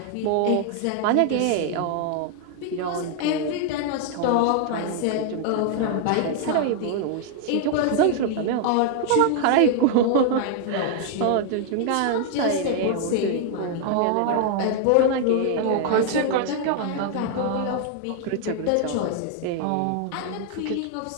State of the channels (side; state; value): both; different; correlation 0.00